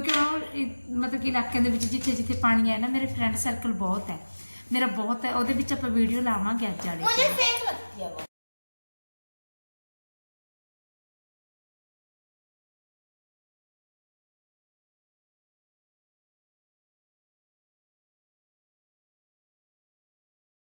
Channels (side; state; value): both; inverted; correlation -1.00